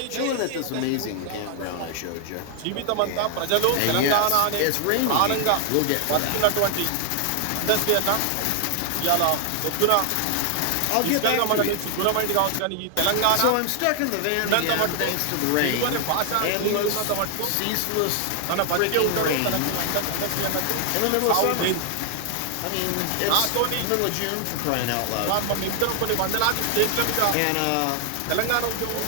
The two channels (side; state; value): both; different; correlation 0.00